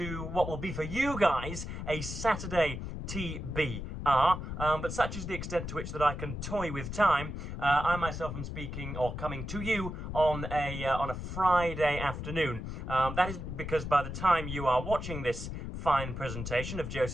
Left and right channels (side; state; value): left; noise; rumble, 6 dB below the sound